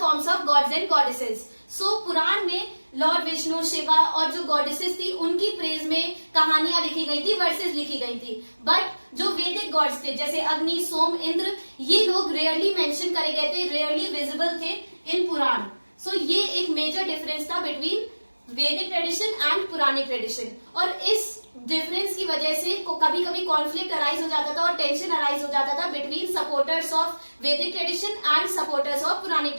of gods and goddesses. So Purana में लॉर्ड विष्णु, शिवा और जो गॉडेसेस थी उनकी प्रेज में कहानियां लिखी गई थी, वर्सेस लिखी गई थी। बट जो वैदिक गॉड्स थे जैसे अग्नि, सोम, इंद्र, ये लोग रेयरली मेंशन करे गए थे, रेयरली विजिबल थे इन पुराण। सो ये एक मेजर डिफरेंस था बिटवीन वैदिक ट्रेडिशन एंड पुरानिक ट्रेडिशन। और इस डिफरेंस की वजह से कभी कभी कॉन्फ्लिक्ट अराइज हो जाता था और टेंशन अराइज हो जाता था between supporters of Vedic tradition and supporters of Puranic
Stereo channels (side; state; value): both; inverted; correlation -1.00